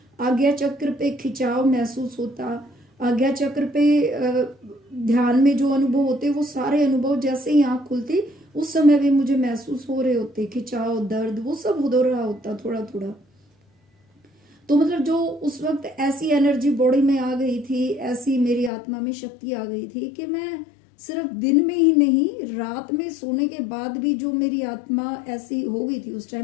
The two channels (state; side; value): drops out; right; at 18.7 s